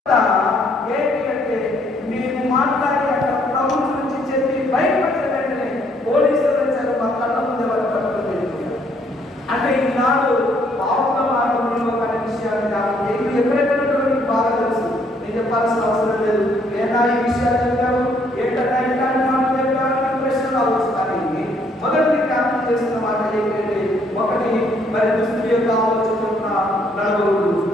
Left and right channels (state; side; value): normal; both; correlation 0.68